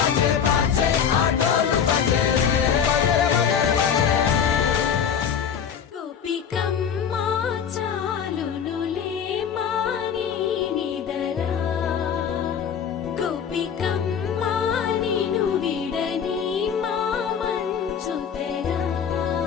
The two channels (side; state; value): right; quieter; 7.7 dB